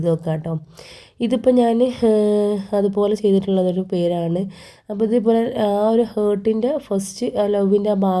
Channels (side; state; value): both; identical; correlation 1.00